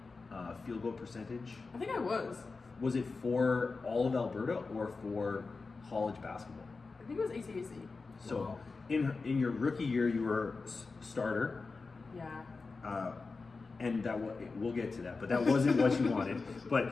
field goal percentage? I think I was. Was it for all of Alberta or for college basketball? I think it was ACAC. So Wow. in your rookie year, you were starter. Yeah. And we'll get to that, but that wasn't what you wanted. But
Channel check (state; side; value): quieter; right; 4.1 dB